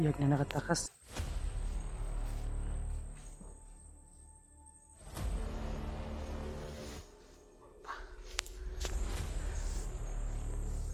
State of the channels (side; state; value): both; identical; correlation 1.00